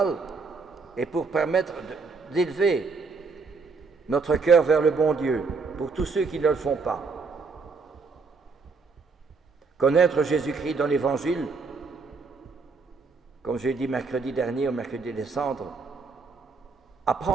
et pour permettre d'élever notre cœur vers le bon Dieu, pour tous ceux qui ne le font pas. Connaître Jésus-Christ dans l'Évangile, comme j'ai dit mercredi dernier, au mercredi des Cendres,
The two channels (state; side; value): quieter; left; 4.5 dB